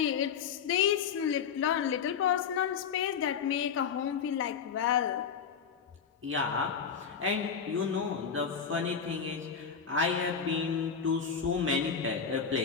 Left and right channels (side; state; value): right; quieter; 6.7 dB